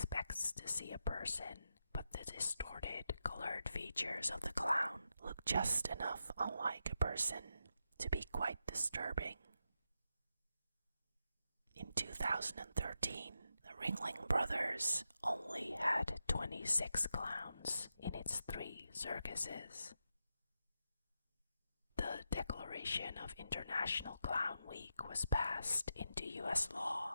to see a person, but the distorted, colored features of the clown look just enough unlike a person to be quite disturbing. In 2013, the Ringling Brothers only had 26 clowns in its 3 circuses. The Declaration of International Clown Week was passed into U.S.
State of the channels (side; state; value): both; inverted; correlation -0.86